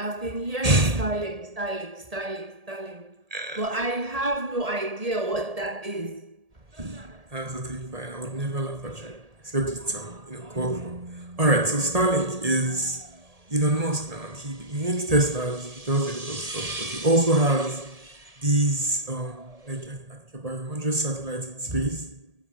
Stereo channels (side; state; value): left; late; 1.8 ms